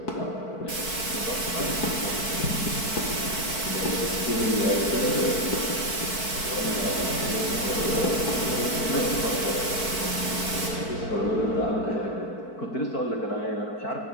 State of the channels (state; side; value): late; right; 4.5 ms